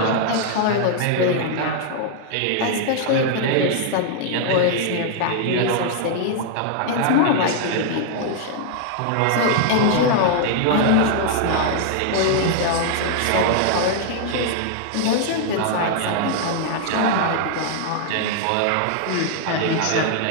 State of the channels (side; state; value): both; different; correlation 0.00